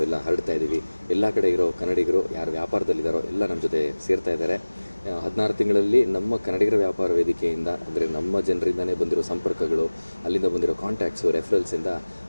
ಹರಡ್ತಾ ಇದ್ದೀವಿ. ಎಲ್ಲ ಕಡೆ ಇರೋ ಕನ್ನಡಿಗರು ಯಾರು ವ್ಯಾಪಾರದಲ್ಲಿದ್ದಾರೋ ಎಲ್ಲ ನಮ್ಮ ಜೊತೆ ಸೇರ್ತಾ ಇದ್ದಾರೆ. 16 ತಿಂಗಳಲ್ಲಿ ನಮ್ಮ ಕನ್ನಡಿಗರ ವ್ಯಾಪಾರ ವೇದಿಕೆಯಿಂದ, ಅಂದರೆ ನಮ್ಮ ಜನರಿಂದನೇ ಬಂದಿರೋ ಸಂಪರ್ಕಗಳು, ಅಲ್ಲಿಂದ ಬಂದಿರೋ ಕಾಂಟ್ಯಾಕ್ಟ್ಸು, ರೆಫರೆನ್ಸಿಂದ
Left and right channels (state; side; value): inverted; both; correlation -1.00